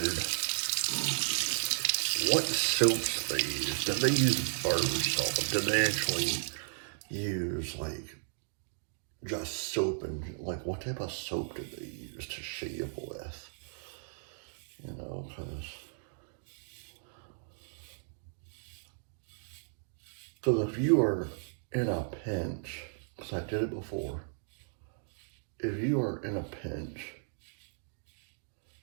what soaps they used. Did they use barber salt? Did they actually use like just soap, and like what type of soap did they use to shave with? You know, because if you are in a pinch, because I did it before, if you are in a pinch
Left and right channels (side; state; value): left; silent; digital silence